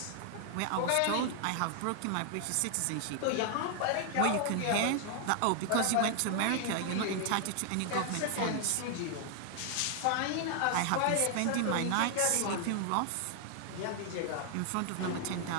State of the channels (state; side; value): different; both; correlation 0.00